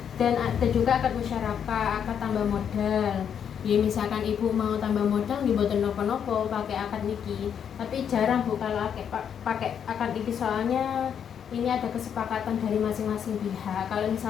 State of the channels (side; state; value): right; quieter; 8.1 dB